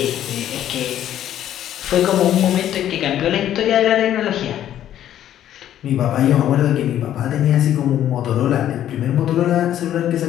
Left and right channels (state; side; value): quieter; right; 11.4 dB